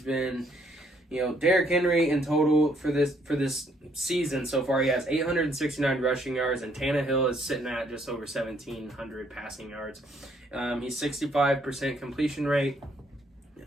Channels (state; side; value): normal; both; correlation 0.68